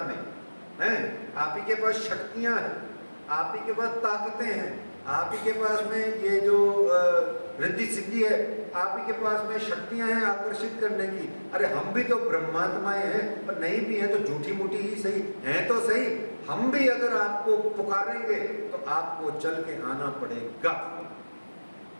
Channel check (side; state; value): both; inverted; correlation -1.00